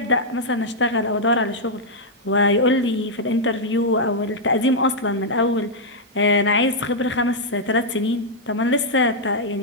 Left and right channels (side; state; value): both; normal; correlation -0.05